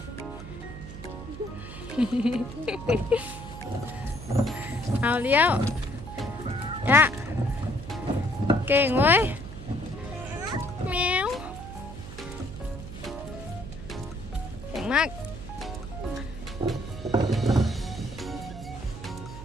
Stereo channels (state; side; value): noise; right; hum, 12 dB below the sound